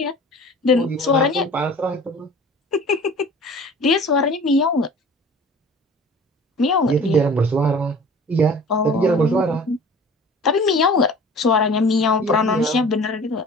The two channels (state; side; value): normal; both; correlation 0.44